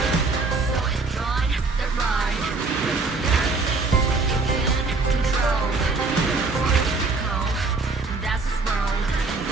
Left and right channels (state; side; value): quieter; left; 3.8 dB